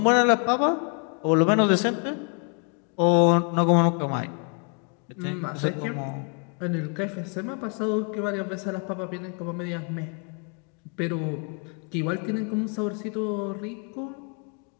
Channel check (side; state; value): right; quieter; 38.8 dB